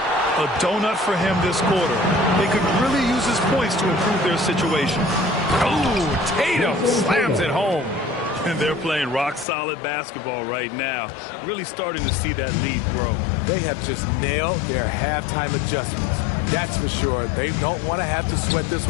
A donut for him this quarter. They could really use his points to improve their situation. Oh, Tatum slams it home. And they're playing rock-solid basketball right now. Really starting to see that lead grow. They have just nailed their halftime adjustments. That's for sure. They don't want to have to sweat this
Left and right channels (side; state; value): right; drops out; at 9.5 s